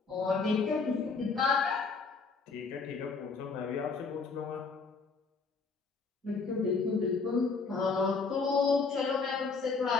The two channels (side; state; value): right; quieter; 4.7 dB